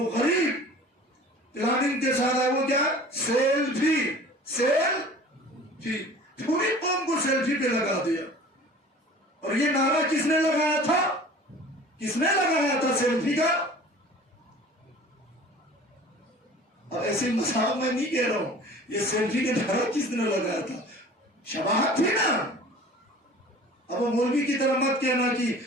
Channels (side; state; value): both; normal; correlation 0.44